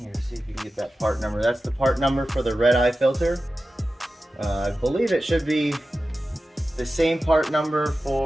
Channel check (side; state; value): both; normal; correlation 0.94